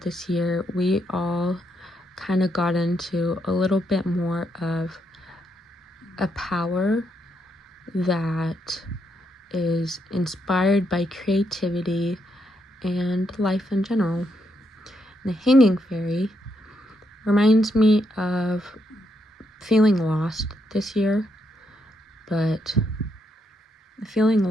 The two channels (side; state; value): both; normal; correlation 0.78